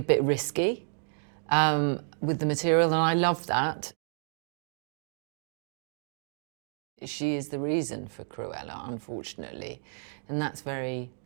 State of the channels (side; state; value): left; silent; digital silence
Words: bit risky with the material, and I love that. She is the reason for Cruella, unfortunately, and that's very